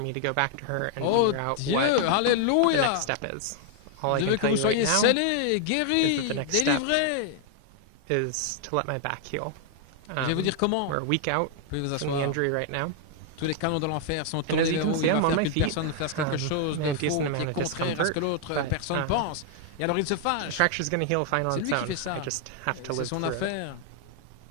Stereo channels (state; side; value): different; both; correlation 0.00